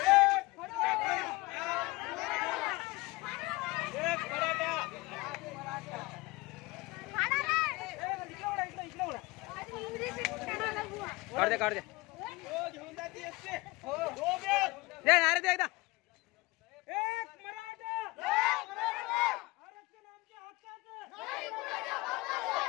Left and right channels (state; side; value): quieter; right; 22.6 dB